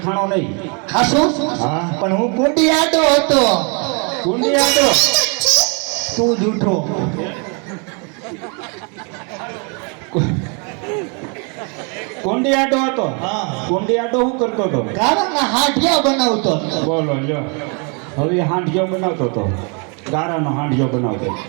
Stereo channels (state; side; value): quieter; left; 35.6 dB